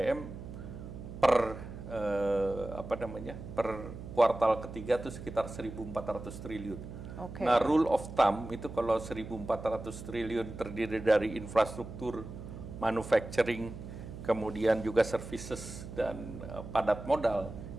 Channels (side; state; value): right; noise; hum, 11 dB below the sound